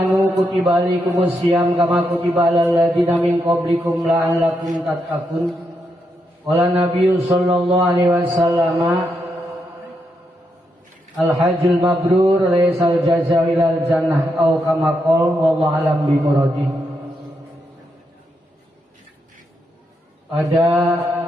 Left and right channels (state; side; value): normal; both; correlation 0.81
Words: kutiba alaikumus syiyam kama kutiba alal ladzina min qablikum la'allakum tattaqun. Qala Nabiyyu sallallahu alaihi wasallam al-hajjul mabrur laysal jazaa'u ilal jannah au kama qala wallahu alam bi muradi. Pada